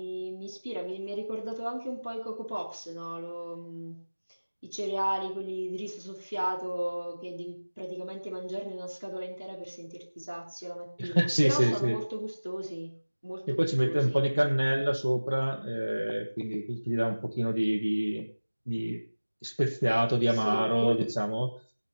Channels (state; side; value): inverted; both; correlation -1.00